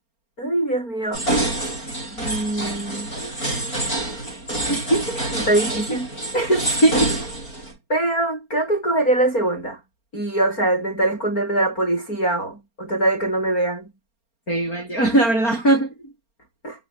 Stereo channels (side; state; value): right; late; 4.3 ms